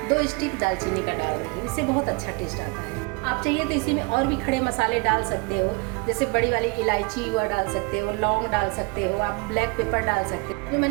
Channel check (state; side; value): quieter; left; 29.3 dB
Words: 2 स्टिक दालचीनी का डाल रही हूँ, इससे बहुत अच्छा टेस्ट आता है। आप चाहिए तो इसी में और भी खड़े मसाले डाल सकते हो, जैसे बड़ी वाली इलायची हुआ डाल सकते हो, लौंग डाल सकते हो, आप ब्लैक पेपर डाल सकते हो। जो